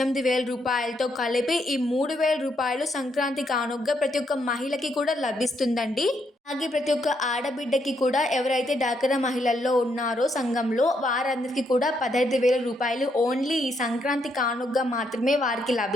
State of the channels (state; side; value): normal; both; correlation 0.76